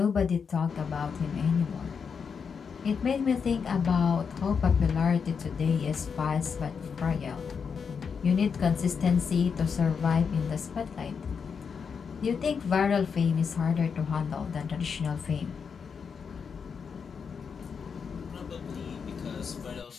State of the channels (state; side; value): quieter; right; 6.2 dB